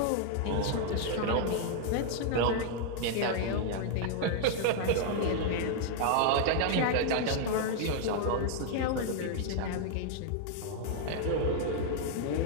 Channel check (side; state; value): both; different; correlation 0.00